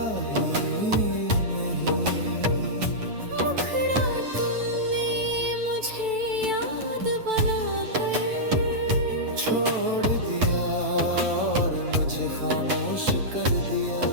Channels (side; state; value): left; late; 9.1 ms